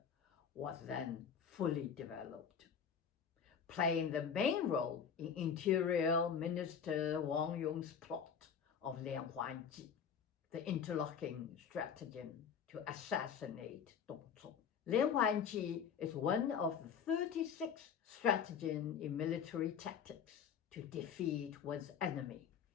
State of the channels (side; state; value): right; quieter; 7.3 dB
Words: was then fully developed, playing the main role in Interior Minister Wang Yong's plot of Lianhuanji, the interlocking stratagem to assassinate Dongzhuo. Lianhuanji is one of the 36 stratagems in military tactics to defeat one's enemy.